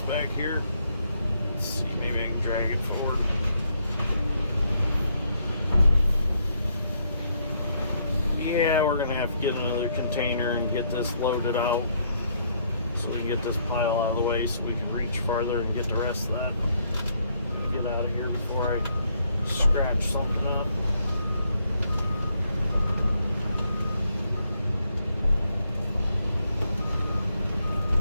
back here. Let's see, maybe I can drag it forward. Yeah, we're gonna have to get another container and get this loaded out, so we can get this pile out of the way so we can reach farther and get the rest of that. Get out of here before I scratch something up.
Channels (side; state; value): both; inverted; correlation -0.73